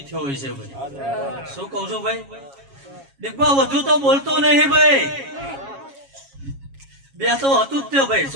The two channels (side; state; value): left; late; 7.3 ms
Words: થયો હોય છે ભાઈ શું કહું છું ભાઈ દીકબા વધુ તો બોલતો નહીં ભાઈ બે તો હતું જ તે ભાઈ